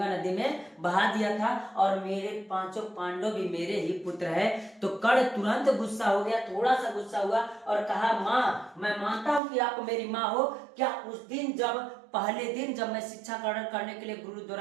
नदी में बहा दिया था, और मेरे पांचों पांडव भी मेरे ही पुत्र है। तो कर्ण तुरंत गुस्सा हो गया, थोड़ा सा गुस्सा हुआ और कहा, माँ मैं मानता हूं कि आप मेरी माँ हो, क्या उस दिन पहले दिन जब मैं शिक्षा ग्रहण करने के लिए गुरु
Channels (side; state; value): left; drops out; at 9.4 s